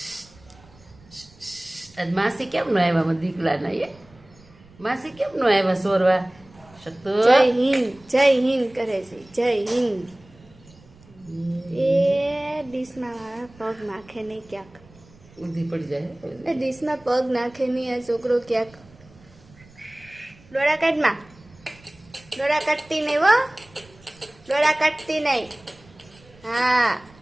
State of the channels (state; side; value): noise; right; rumble, 26 dB below the sound